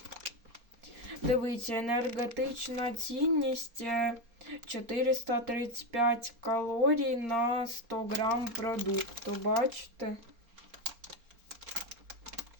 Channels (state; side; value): late; left; 4.3 ms